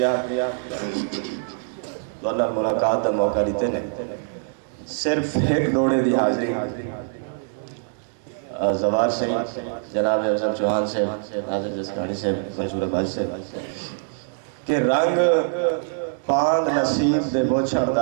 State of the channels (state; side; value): silent; left; digital silence